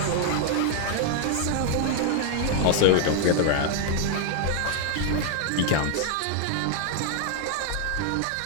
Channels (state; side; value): different; both; correlation 0.00